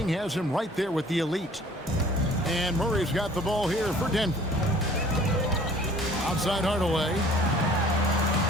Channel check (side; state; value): both; normal; correlation 0.52